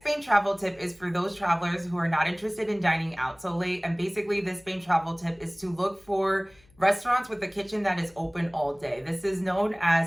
travel tip is for those travelers who are not interested in dining out so late. And basically this Spain travel tip is to look for restaurants with a kitchen that is open all day. This is known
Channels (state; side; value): noise; left; hum, 30 dB below the sound